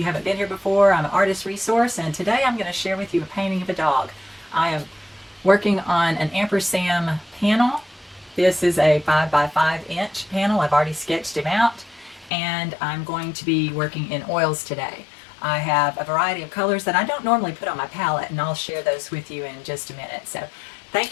haven't been here before, I'm an artist resource, and today I'm going to share with you a painting of a dog. I am working on an Ampersand panel. This is a 5 by 5 inch panel. I've already sketched him out, and I'm going to be working in oils today. I have a variety of colors that I don't normally put on my palette, and I'll share those with you in just a minute. So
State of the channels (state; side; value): drops out; right; at 12.3 s